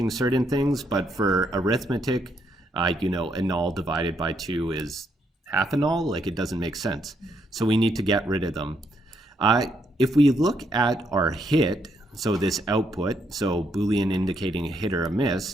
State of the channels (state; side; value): normal; both; correlation 0.75